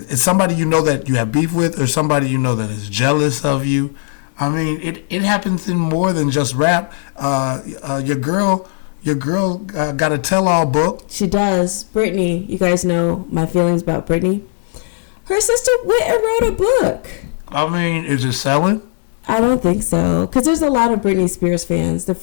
somebody that you have beef with, or somebody that is jealous of you. I mean, it happens in more than just rap. Your girl got a tell-all book. She does. Brittney, you guys know my feelings about Brittney. Her sister went and wrote a book. I mean, is it selling? I don't think so, because there's a lot of Britney Spears fans. The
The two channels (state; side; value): silent; right; digital silence